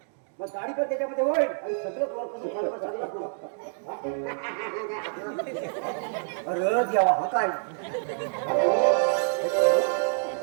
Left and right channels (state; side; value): silent; left; digital silence